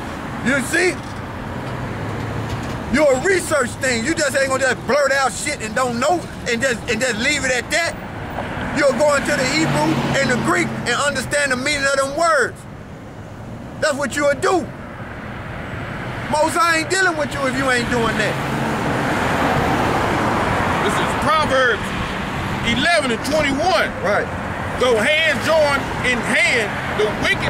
You see? You're a research thing. You just ain't gonna just blurt out shit and don't know and just leave it at that. You'll go into the Hebrew and the Greek and understand the meaning of them words. That's what you'll do. Most I ain't dealing with you if you ain't doing that. This is Proverbs 11 and 21. Right. Though hands join in hand, the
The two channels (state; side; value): identical; both; correlation 1.00